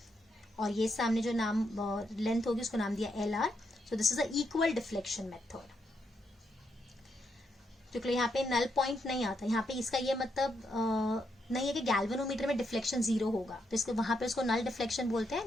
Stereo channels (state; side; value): normal; both; correlation 0.80